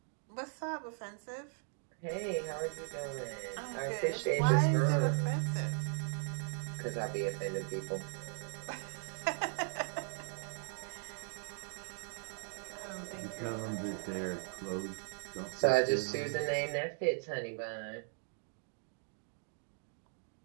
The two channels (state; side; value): silent; left; 52 dB below the other